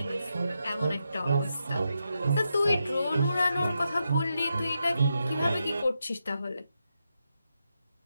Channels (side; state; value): both; inverted; correlation -0.85